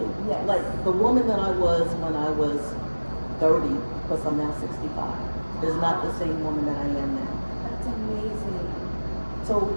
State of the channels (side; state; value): both; inverted; correlation -1.00